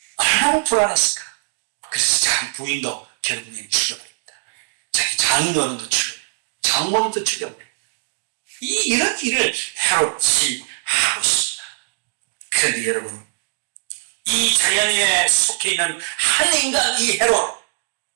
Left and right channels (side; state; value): left; silent; 65 dB below the other